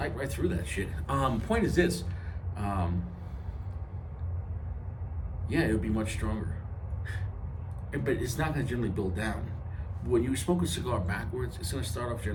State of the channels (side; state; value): both; identical; correlation 1.00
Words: right through that shit. Point is this. Yeah, it would be much stronger. But it's not going to generally build down. When you smoke a cigar backwards, it's going to start off